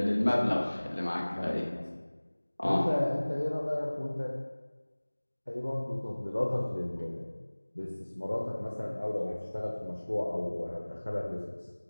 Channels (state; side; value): inverted; both; correlation -1.00